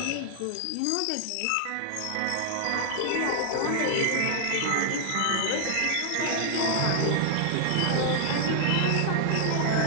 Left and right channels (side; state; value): both; different; correlation 0.00